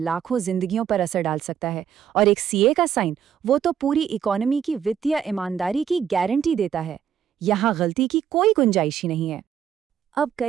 जिंदगियों पर असर डाल सकता है, और एक सीए का साइन, वो तो पूरी इकोनॉमी की वित्तीय ईमानदारी की गारंटी देता है। यहाँ गलती की कोई गुंजाइश ही नहीं है। अब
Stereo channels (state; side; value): quieter; left; 8.8 dB